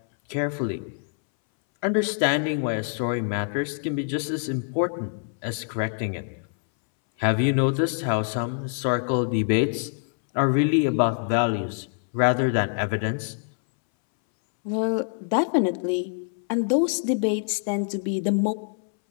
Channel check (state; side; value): silent; right; 62 dB below the other